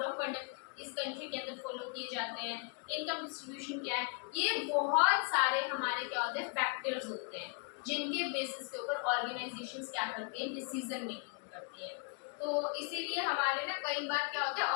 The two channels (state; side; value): quieter; right; 35.3 dB